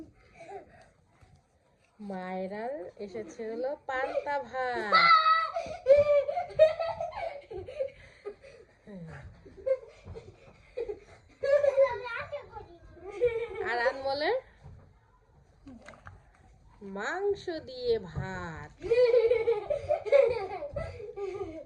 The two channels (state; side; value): identical; both; correlation 1.00